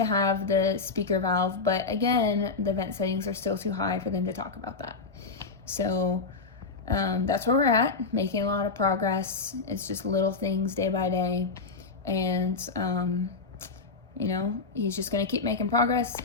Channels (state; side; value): quieter; right; 4.3 dB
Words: have the speaker valve, but again, the vent settings are still too high for them to talk about that. So that's where we're at, making a lot of progress. It's just little things day by day, and you know, he's just going to keep making progress,